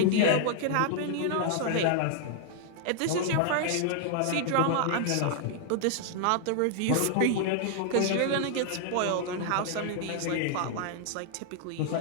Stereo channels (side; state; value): both; different; correlation 0.00